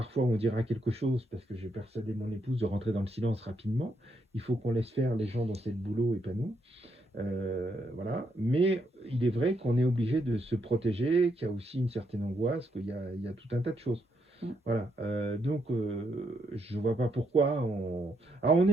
fois où on dira quelque chose, parce que j'ai persuadé mon épouse de rentrer dans le silence rapidement. Il faut qu'on laisse faire les gens dans cette boulot et pas nous. Voilà. Mais il est vrai qu'on est obligé de se protéger, qu'il y a aussi une certaine angoisse, qu'il y a tout un tas de choses. Voilà. Donc, je ne vois pas pourquoi. Alors, on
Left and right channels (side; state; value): both; normal; correlation 0.77